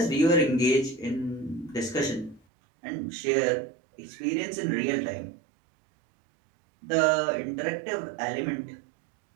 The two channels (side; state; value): left; drops out; at 2.4 s